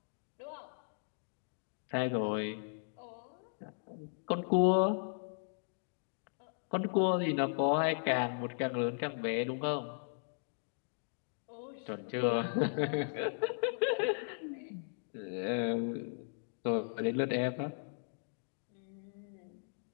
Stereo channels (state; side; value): silent; right; digital silence